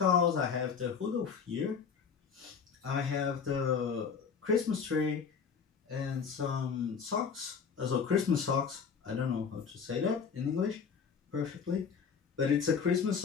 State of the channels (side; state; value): right; quieter; 6.3 dB